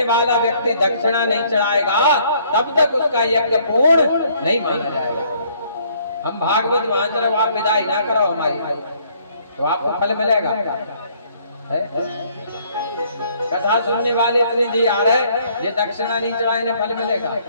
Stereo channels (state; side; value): inverted; both; correlation -0.63